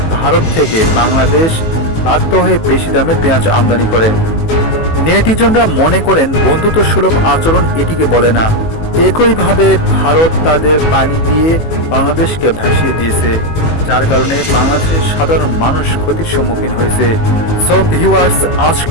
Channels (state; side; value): late; right; 18 ms